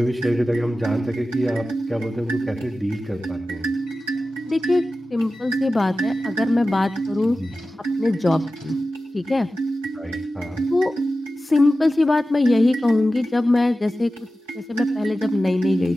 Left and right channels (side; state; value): both; normal; correlation 0.94